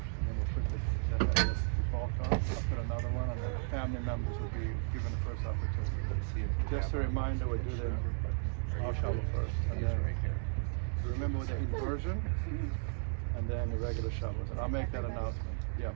Just a reminder, we'll do the shovel first, and then remember with the inversion, and then the regular shovels. And I'll make that announcement. Yeah,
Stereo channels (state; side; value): silent; left; 55 dB below the other